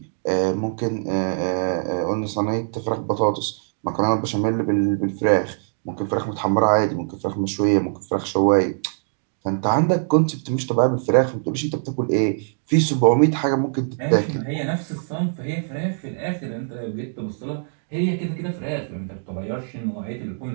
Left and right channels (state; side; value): silent; left; digital silence